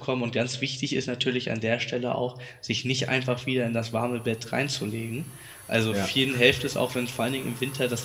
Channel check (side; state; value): both; identical; correlation 1.00